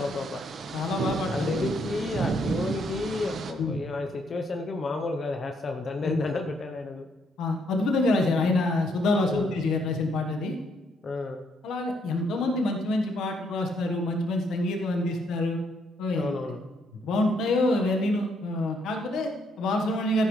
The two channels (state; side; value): normal; both; correlation 0.72